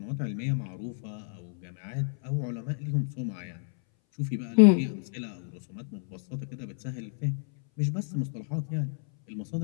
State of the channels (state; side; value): silent; right; 58 dB below the other